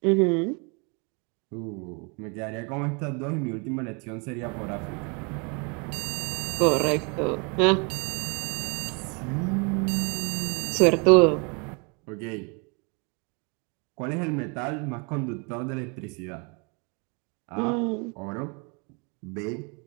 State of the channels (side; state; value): left; quieter; 33.4 dB